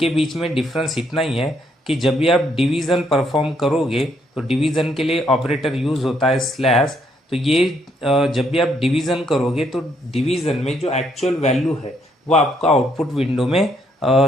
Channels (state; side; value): normal; both; correlation 0.72